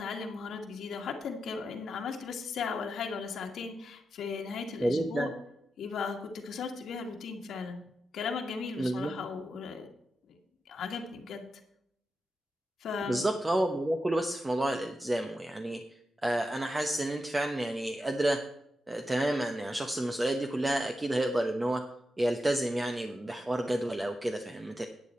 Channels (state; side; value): normal; both; correlation 0.89